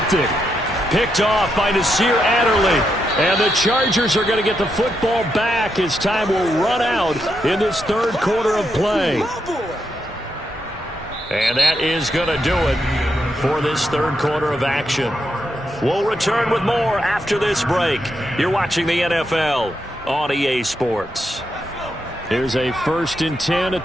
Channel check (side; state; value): both; normal; correlation 0.82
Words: Picked off by Nasir Adderley. And the Chargers are going to get the football back as time will run out in this third quarter of play. And that is going to do it for this third quarter of action. We'll return with more after this break. You're watching the NFL on EA Sports. Here's a 1st and 10 at